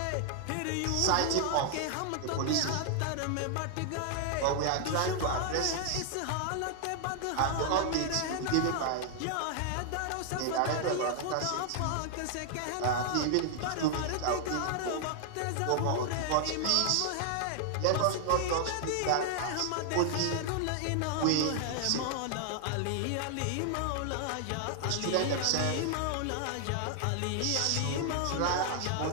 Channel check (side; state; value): both; different; correlation 0.00